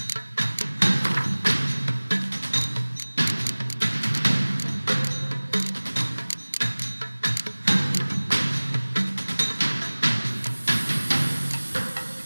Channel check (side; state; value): both; inverted; correlation -1.00